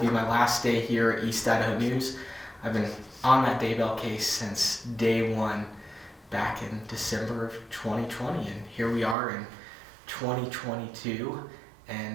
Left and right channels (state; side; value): drops out; left; at 9.2 s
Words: my last day here at East Idaho News. I've been on that Daybell case since day one back in December of 2020, and here we are in 2022,